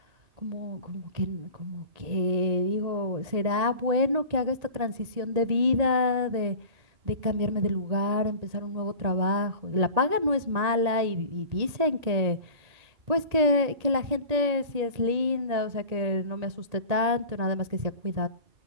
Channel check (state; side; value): late; left; 1.9 ms